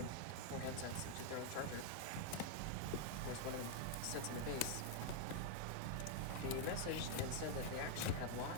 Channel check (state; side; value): different; both; correlation 0.00